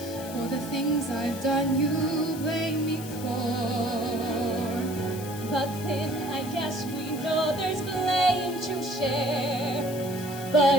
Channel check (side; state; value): left; noise; hiss, 13 dB below the sound